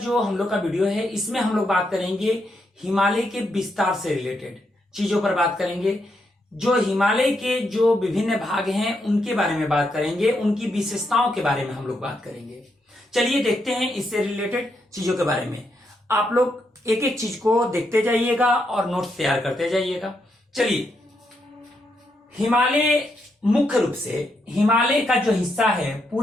हम लोग का वीडियो है, इसमें हम लोग बात करेंगे हिमालय के विस्तार से रिलेटेड चीजों पर बात करेंगे। जो हिमालय के जो विभिन्न भाग हैं उनके बारे में बात करेंगे, उनकी विशेषताओं के बारे में हम लोग बात करेंगे। चलिए देखते हैं इससे रिलेटेड चीजों के बारे में। आप लोग एक एक चीज को देखते जाइएगा और नोट्स तैयार करते जाइएगा। चलिए, हिमालय मुख्य रूप से हिमालय का जो हिस्सा है,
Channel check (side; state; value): both; normal; correlation 0.80